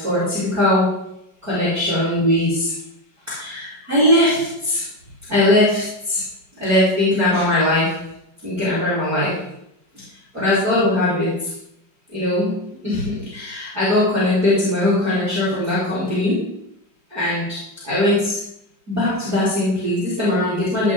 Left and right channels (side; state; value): left; late; 5.1 ms